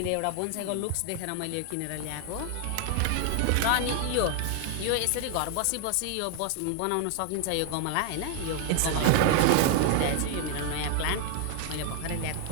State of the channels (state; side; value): different; both; correlation 0.00